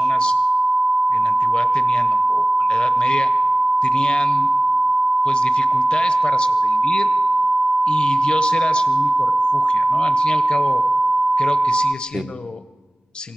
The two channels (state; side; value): normal; both; correlation 0.98